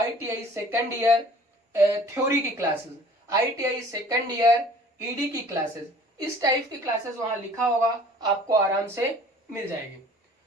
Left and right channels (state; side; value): normal; both; correlation 0.50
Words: सेकेंड ईयर थ्योरी की classes, ITI second year ED की क्लासेस, इस टाइप की क्लासेस वहां लिखा होगा, आपको आराम से मिल जाएगी।